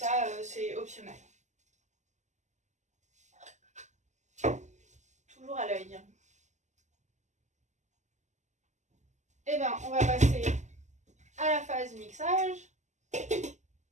c'est optionnel. Toujours à l'œil. Et on va passer à la phase mixage.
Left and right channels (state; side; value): late; left; 0.34 ms